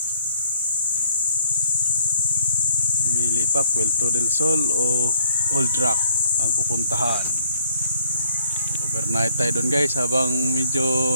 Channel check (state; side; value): inverted; both; correlation -0.65